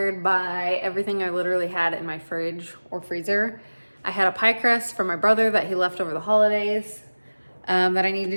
by everything I literally had in my fridge or freezer. I had a pie crust from my brother that he left over the holidays that I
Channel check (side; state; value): both; inverted; correlation -1.00